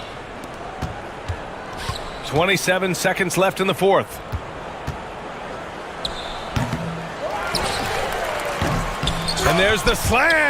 27 seconds left in the 4th. And there's the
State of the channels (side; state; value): both; identical; correlation 1.00